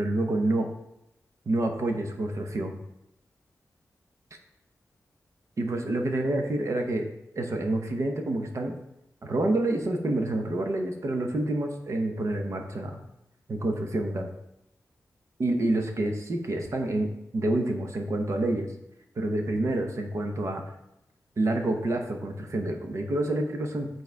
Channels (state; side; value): normal; both; correlation 0.87